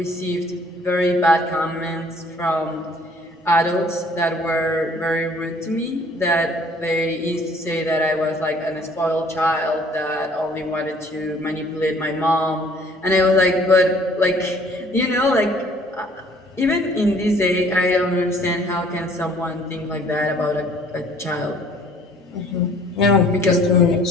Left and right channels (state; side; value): normal; both; correlation 0.57